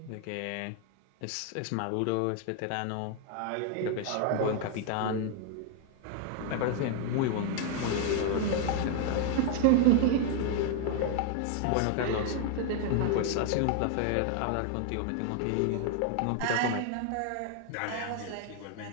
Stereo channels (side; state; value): both; different; correlation 0.00